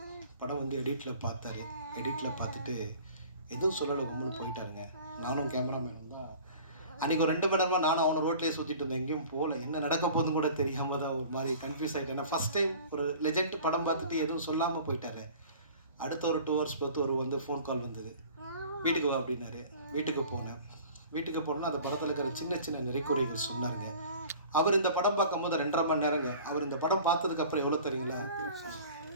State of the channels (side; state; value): both; inverted; correlation -0.45